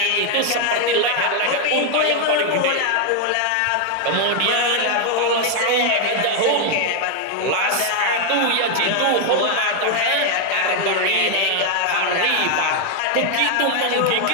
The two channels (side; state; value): both; different; correlation 0.00